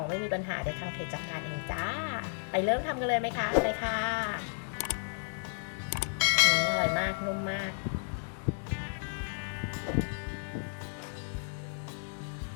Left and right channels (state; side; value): silent; right; digital silence